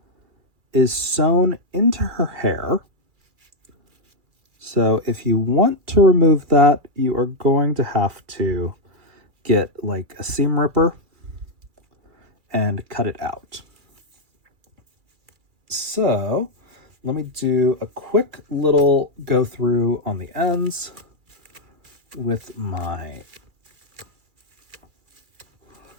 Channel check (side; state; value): left; late; 2.4 ms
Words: is sewn into her hair. So if you want to remove that, you are going to have to get like a seam ripper and cut it out. So let me do a quick little go through on the ends with my